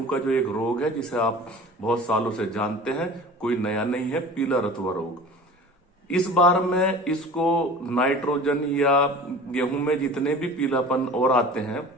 का जो एक रोग है जिसे आप बहुत सालों से जानते हैं, कोई नया नहीं है, पीला रतुआ रोग। इस बार में इसको नाइट्रोजन या गेहूं में जितने भी पीलापन और आते हैं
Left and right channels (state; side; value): normal; both; correlation 0.39